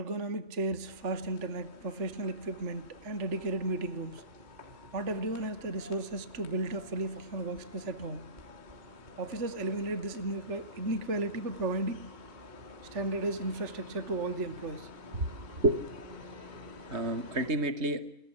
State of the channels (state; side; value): late; left; 3.4 ms